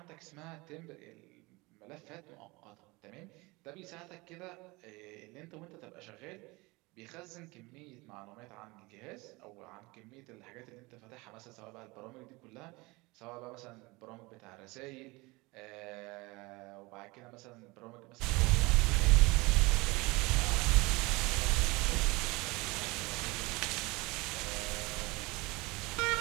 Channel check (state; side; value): quieter; left; 24.0 dB